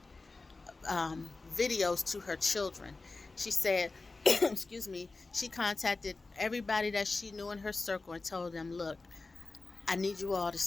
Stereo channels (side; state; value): right; quieter; 3.6 dB